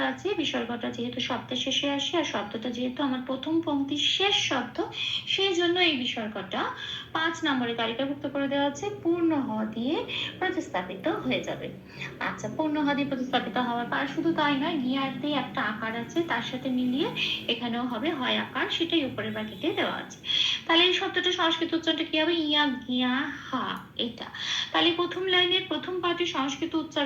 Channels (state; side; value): identical; both; correlation 1.00